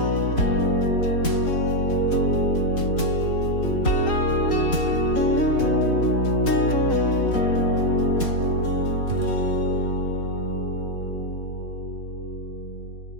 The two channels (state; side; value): late; right; 3.9 ms